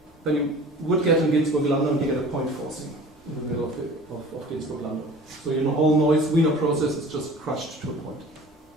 then you would get in Ginzburg-Landau and you get a point forcing in the middle of Ginzburg-Landau. So your whole noise Wiener process is just crushed to a point.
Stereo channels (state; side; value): normal; both; correlation 0.43